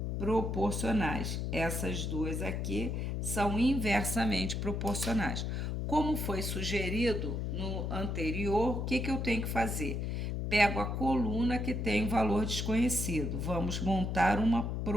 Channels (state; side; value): noise; left; hum, 1 dB below the sound